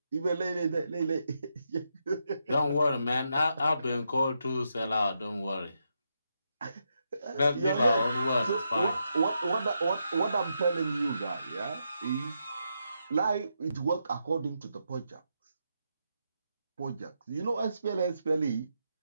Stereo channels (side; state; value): both; inverted; correlation -0.82